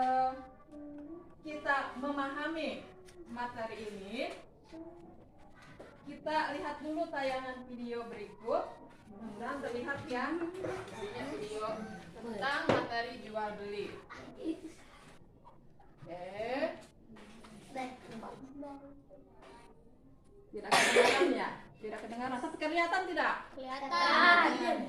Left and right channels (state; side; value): identical; both; correlation 1.00